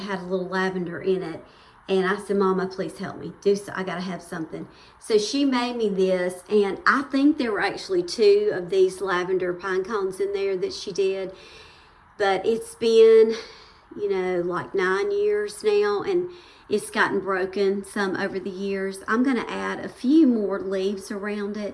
a little lavender in it. And I said, Mama, please help me. I got to have something. So she made me this, and I think there were actually 2 of these lavender pine cones in there that she did. But it's been, like 9 years now, and it's gotten broken some over the years. I'm going to add a few more leaves around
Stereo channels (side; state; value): both; identical; correlation 1.00